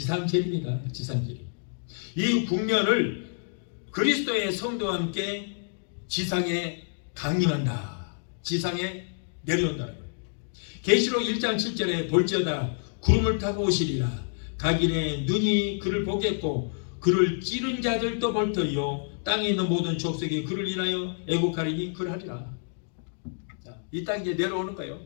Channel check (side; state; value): right; silent; digital silence